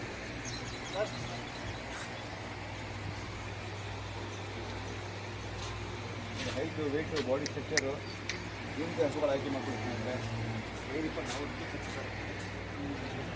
ಹೈಟು ವೆಯ್ಟು ಬಾಡಿ ಸ್ಟ್ರಕ್ಚರು ಈ ರೀತಿ ಹಸುಗಳು ಆಯ್ಕೆ ಮಾಡ್ಕೊಳ್ತೀನಿ ಅಂದರೆ ಏನಿಪ್ಪ ನಾವು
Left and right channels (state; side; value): identical; both; correlation 1.00